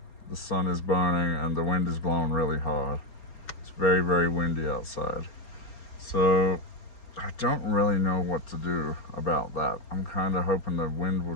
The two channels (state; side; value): late; right; 4.4 ms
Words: The sun is burning and the wind is blowing really hard. It's very, very windy outside. So I don't really know what to do about that. I'm kind of hoping the wind will